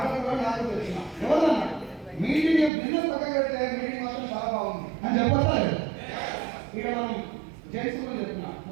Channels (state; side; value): drops out; left; at 2.7 s